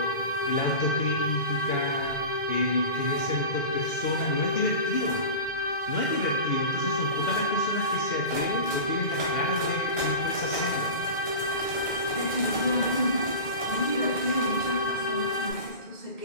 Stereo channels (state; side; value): late; right; 2.1 ms